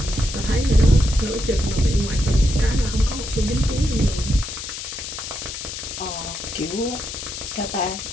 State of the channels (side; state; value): left; noise; hiss, 8 dB below the sound